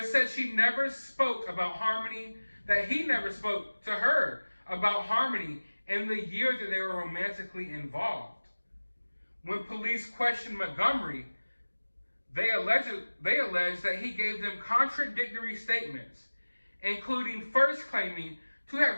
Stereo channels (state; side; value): inverted; both; correlation -1.00